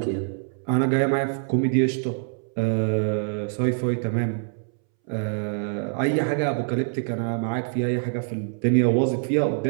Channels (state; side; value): silent; left; 62 dB below the other